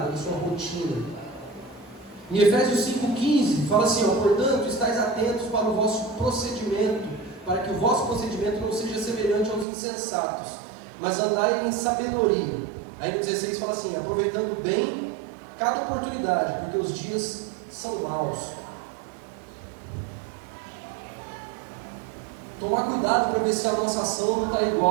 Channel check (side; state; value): left; drops out; at 9.7 s